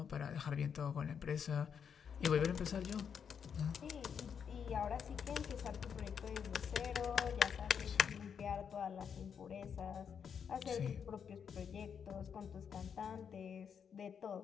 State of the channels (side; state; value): right; quieter; 7.3 dB